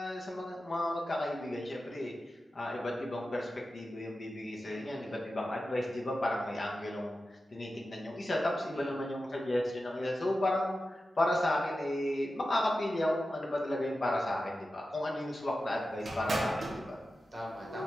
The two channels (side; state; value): both; normal; correlation 0.93